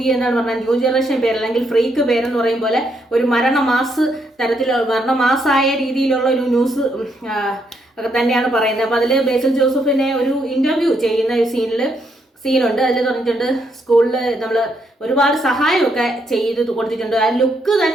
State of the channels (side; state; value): both; normal; correlation 0.76